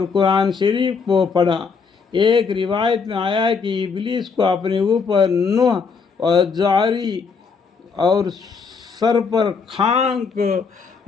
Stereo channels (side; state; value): right; quieter; 5.3 dB